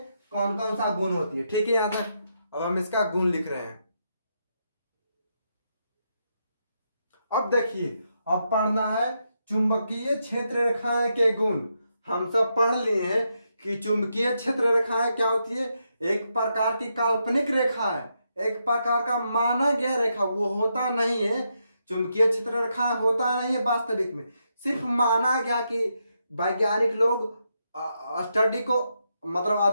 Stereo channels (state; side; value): inverted; both; correlation -0.81